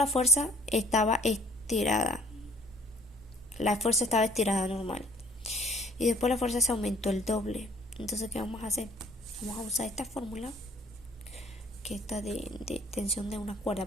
fuerza estaba estirada, normal, y después la fuerza se aumentó el doble. Entonces, ¿qué vamos a hacer? Vamos a usar esta fórmula, que está de tensión de una cuerda,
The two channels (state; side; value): normal; both; correlation 0.57